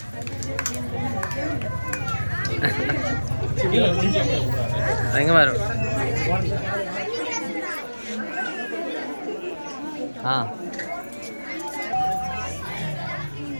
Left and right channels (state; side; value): inverted; both; correlation -1.00